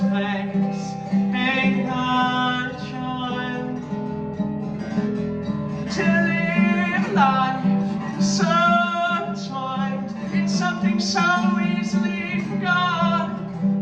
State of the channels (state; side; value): identical; both; correlation 1.00